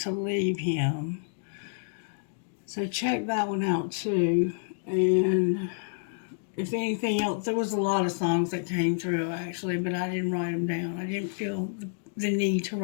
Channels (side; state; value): right; silent; digital silence